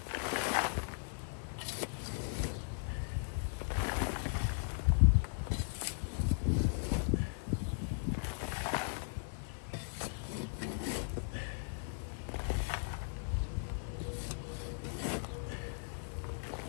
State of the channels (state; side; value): silent; right; 53 dB below the other